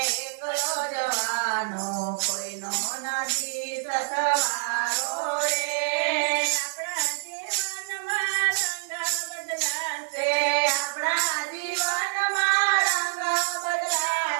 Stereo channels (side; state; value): left; silent; digital silence